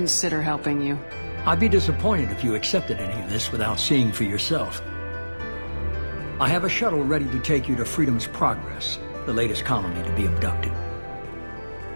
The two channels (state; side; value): inverted; both; correlation -1.00